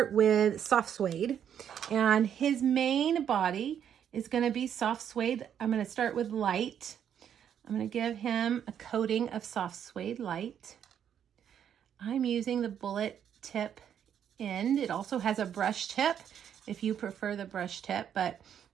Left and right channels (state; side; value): quieter; left; 9.0 dB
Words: with soft suede, and his main body is going to be soft suede. I'm going to start with light. I'm going to give him a coating of soft suede light. I'm using the bullet tip end. It also has a brush tip if you prefer the brush tip, but